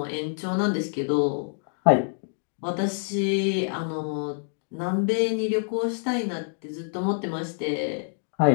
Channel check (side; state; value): right; silent; digital silence